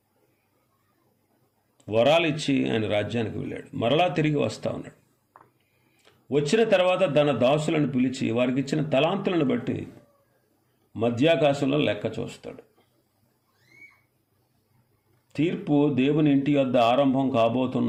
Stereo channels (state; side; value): identical; both; correlation 1.00